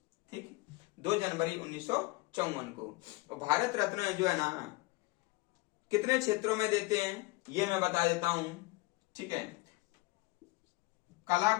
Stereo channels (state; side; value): quieter; right; 22.6 dB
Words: ठीक, 2 जनवरी 1954 को। और भारत रत्न जो है ना, कितने क्षेत्रों में देते हैं ये मैं बता देता हूं। ठीक है, कला